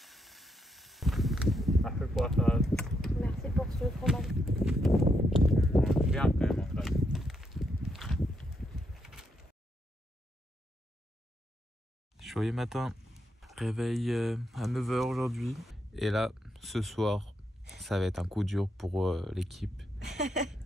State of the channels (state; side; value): normal; both; correlation 0.79